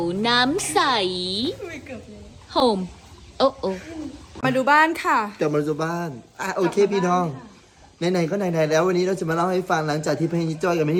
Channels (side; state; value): both; identical; correlation 1.00